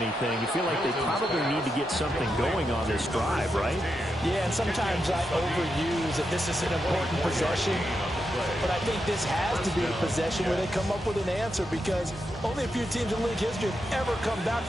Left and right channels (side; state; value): both; normal; correlation 0.85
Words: you feel like they probably need to get something going on this drive, right? Yeah, and sometimes I overuse that this is an important possession, but I think this has to be the possession where they come up with an answer because only a few teams in league history have ever come back